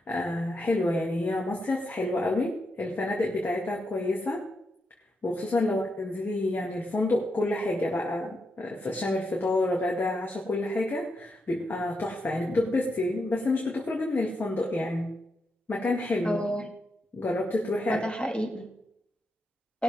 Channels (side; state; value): both; normal; correlation 0.83